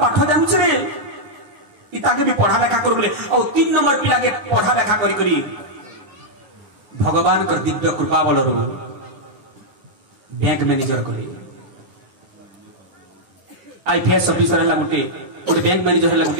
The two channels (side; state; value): left; late; 10 ms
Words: जानू रे इताके भी पढ़ा लेखा कर बोले और 3 नंबर पिला के पढ़ा लेखा करी भगवान कर दिव्य कृपा बल बैंक मैनेजर करे आईपीएस ऑफिसर है गोटे गोटे बैंक मैनेजर है